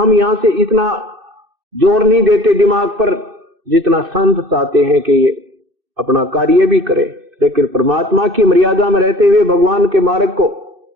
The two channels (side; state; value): left; late; 2.6 ms